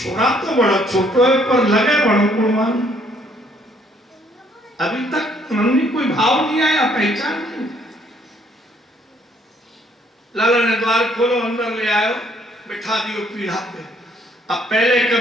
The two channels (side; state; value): both; normal; correlation 0.65